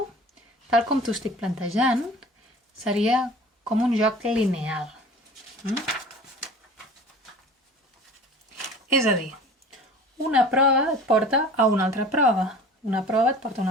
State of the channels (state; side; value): normal; both; correlation 0.42